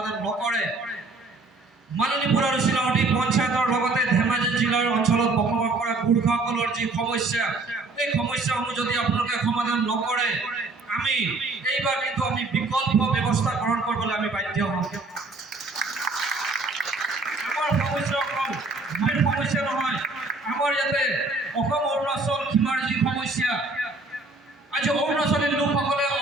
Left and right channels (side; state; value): left; quieter; 3.4 dB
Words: নকৰে মালিনীপুৰ আৰু চিলাচুটি পঞ্চায়তৰ লগতে ধেমাজি জিলাৰ অঞ্চলত বসবাস কৰা গোৰ্খাসকলৰ যি সমস্যা এই সমস্যাসমূহ যদি আপোনালোকে সমাধান নকৰে আমি এইবাৰ কিন্তু আমি বিকল্প ব্যৱস্থা গ্ৰহণ কৰিবলৈ আমি বাধ্য হ'ম। আমাৰ সমস্যা অকল ভূমিৰ সমস্যা নহয়, আমাৰ ইয়াতে অসম অৰুণাচল সীমাৰ যি সমস্যা আজি অৰুণাচলী লোকসকলে